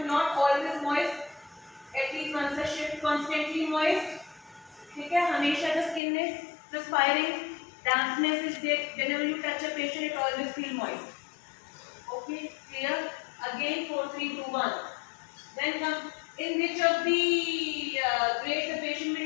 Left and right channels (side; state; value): right; drops out; at 6.0 s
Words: not always moist. At least once a shift, constantly moist. ठीक है, हमेशा the skin is perspiring, dampness is there. Whenever you touch a patient, it always feel moist. Okay, clear? Again 4, 3, 2, 1. Then come in which of the grade the patient